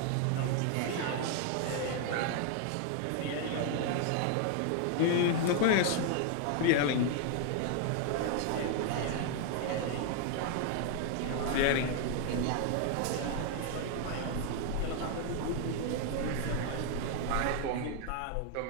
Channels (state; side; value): different; both; correlation 0.00